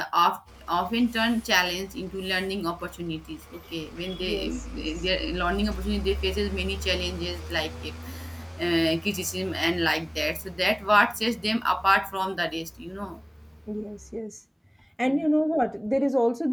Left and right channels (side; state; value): both; identical; correlation 1.00